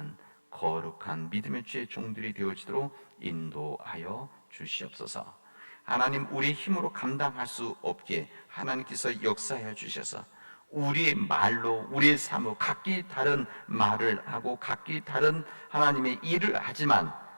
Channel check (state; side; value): inverted; both; correlation -1.00